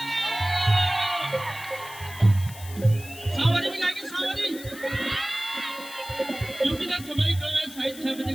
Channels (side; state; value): left; noise; hiss, 15 dB below the sound